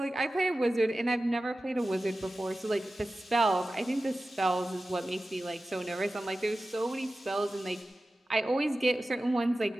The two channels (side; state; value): both; normal; correlation 0.95